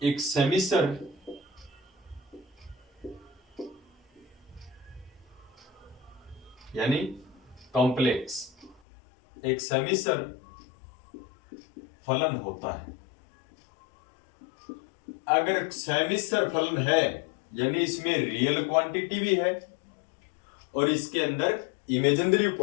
एक सेमिसर यानी कॉम्प्लेक्स, एक सेमिसर फलन होता है। अगर सेमिसर फलन है यानी इसमें रियल क्वांटिटी भी है और इसके अंदर इमेजिनरी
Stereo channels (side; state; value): right; drops out; at 8.8 s